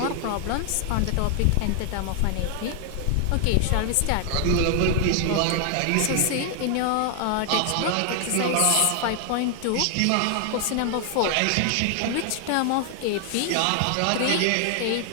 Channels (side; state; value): both; different; correlation 0.00